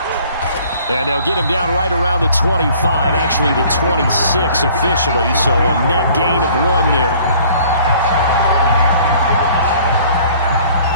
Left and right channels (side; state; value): both; inverted; correlation -0.54